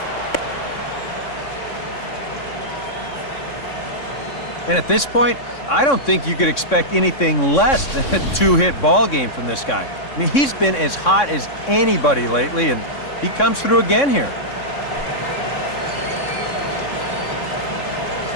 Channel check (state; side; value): late; right; 3.6 ms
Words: And at this point, I don't think you could expect anything less than a two-hit ball game from this guy. I mean, he's been as hot as anybody lately, and he comes through again here.